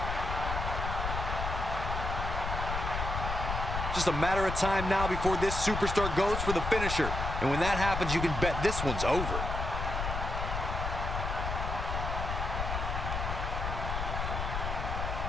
Just a matter of time now before this superstar goes for the finisher. And when that happens, you can bet this one's over.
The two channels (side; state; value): left; noise; rumble, 3 dB below the sound